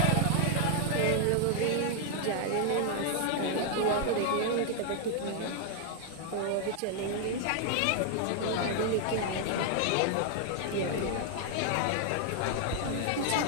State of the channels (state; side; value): different; both; correlation 0.00